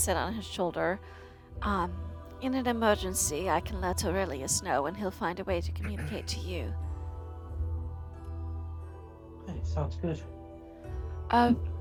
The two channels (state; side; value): identical; both; correlation 1.00